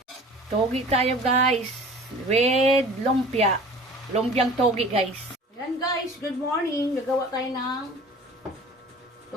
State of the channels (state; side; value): normal; both; correlation 0.44